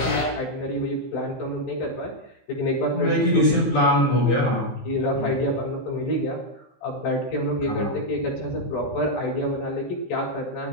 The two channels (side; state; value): right; late; 15 ms